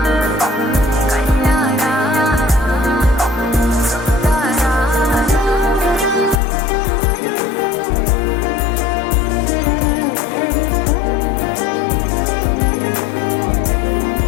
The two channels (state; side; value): drops out; right; at 6.4 s